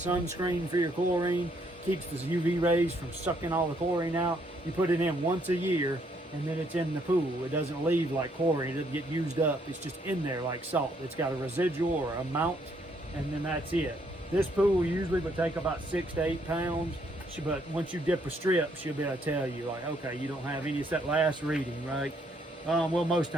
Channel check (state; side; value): normal; both; correlation 0.70